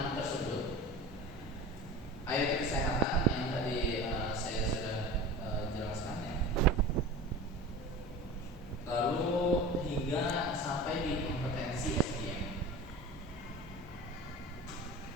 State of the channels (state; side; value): normal; both; correlation 0.34